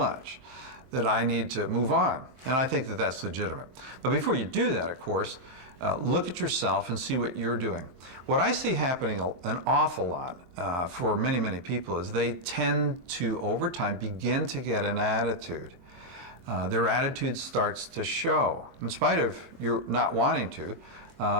that I need to move on. And I think that that's legitimate. But before you do that, of course, look at yourself and see what you're doing. What I see happening an awful lot for many, many people is they tend to, over time, begin to get an attitude. Their attitude starts to show. In spite of you not wanting to,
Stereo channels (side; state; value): left; late; 23 ms